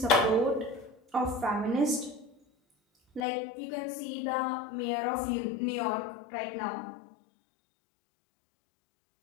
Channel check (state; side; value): drops out; right; at 3.2 s